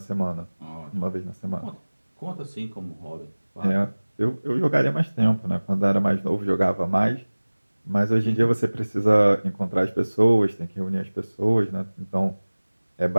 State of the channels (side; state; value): both; inverted; correlation -1.00